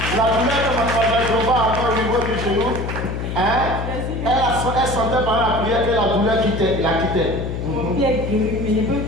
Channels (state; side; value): noise; left; hum, 4 dB below the sound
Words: La douleur de mademoiselle Trouba encore au niveau du genou, hein? Elle sentait pendant la prière que la douleur la quittait. Mon pied est guéri, mais je peux